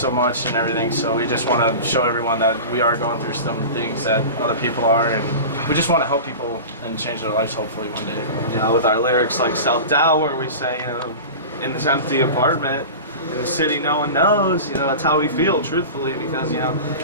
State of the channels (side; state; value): both; inverted; correlation -0.31